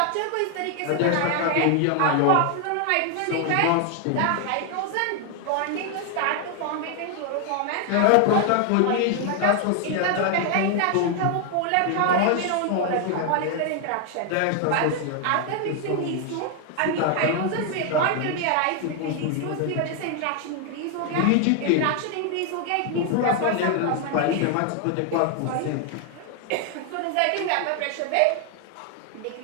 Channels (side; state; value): both; different; correlation 0.00